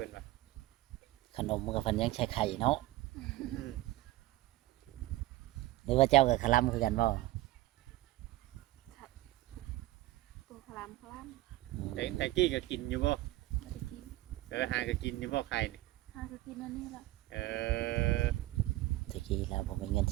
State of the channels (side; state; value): left; quieter; 17.3 dB